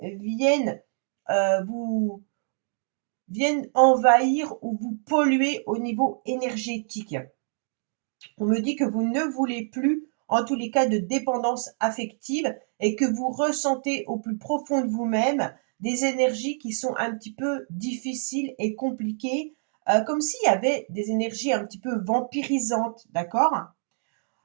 vous viennent envahir ou vous polluer au niveau énergétique. On me dit que vous ne voulez plus, en tous les cas, de dépendance affective et que vous ressentez au plus profond de vous-même des énergies qui sont un petit peu difficiles et compliquées, comme s'il y avait des énergies un petit peu vampirisantes, d'accord?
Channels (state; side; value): silent; left; digital silence